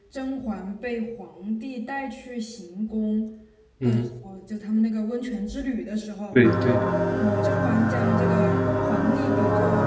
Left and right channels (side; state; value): both; identical; correlation 1.00